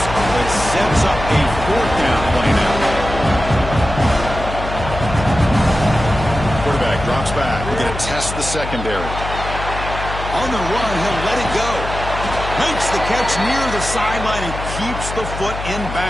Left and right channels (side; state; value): left; noise; hum, 8 dB below the sound